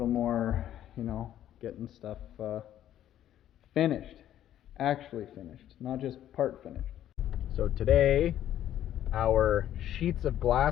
more, you know, getting stuff finished. Actually finished, not just part finished. So today, our sheets of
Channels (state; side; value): quieter; right; 11.7 dB